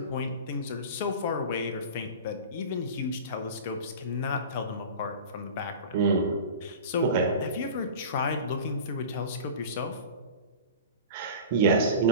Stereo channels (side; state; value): both; inverted; correlation -0.33